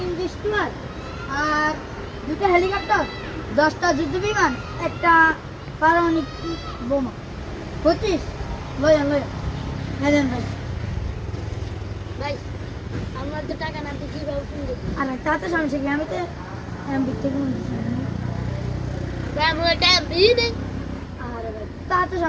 ডিস্টুয়ার আর 2টা হেলিকপ্টার, 10টা যুদ্ধ বিমান, একটা পারমাণবিক বোমা। 25 লয়া লয়া। হ্যাঁ দেন ভাই। ভাই আমার তো টাকা না, তুই কিভাবে কিনবি? আরে তাতে সমস্যা কি, আমি তো এমবি থেকে ভাই আমার টাকা দিয়ে দে। আরে ভাই তাতে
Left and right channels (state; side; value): identical; both; correlation 1.00